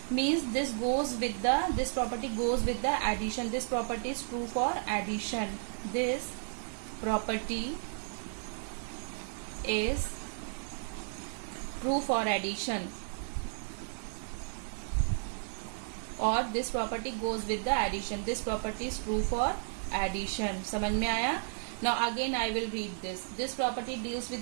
Means this property goes with the addition. This property is true for addition. This property is true for addition, or this property goes with the addition. This property is true for addition. समझ में आया? Now again I will read this. This property deals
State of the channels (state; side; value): silent; left; digital silence